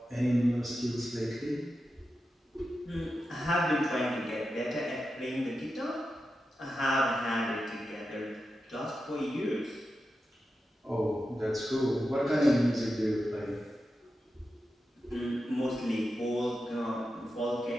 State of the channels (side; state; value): both; normal; correlation 0.90